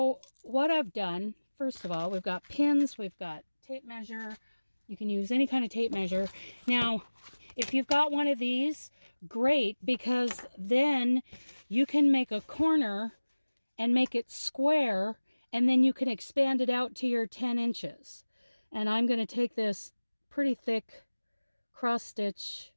what I've done, first of all, we've got pins, we've got tape measure. You can use any kind of tape measure. Now, if you've got one of these, great, because then you can make a corner and make it square, and then you can expand it out to your 10 inches. And I'm going to take this pretty thick cross stitch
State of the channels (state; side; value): inverted; both; correlation -1.00